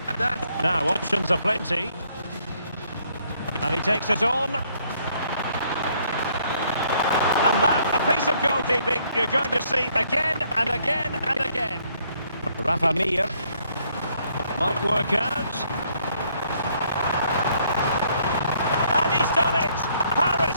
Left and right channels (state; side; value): inverted; both; correlation -0.67